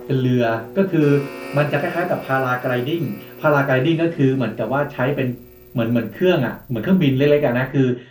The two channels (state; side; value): identical; both; correlation 1.00